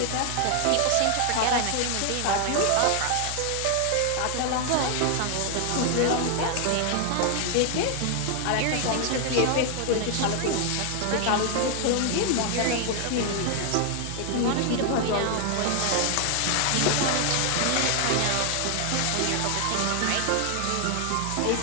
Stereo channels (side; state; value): both; different; correlation 0.00